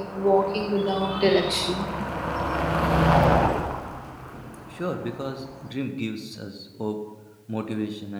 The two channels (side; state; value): both; identical; correlation 1.00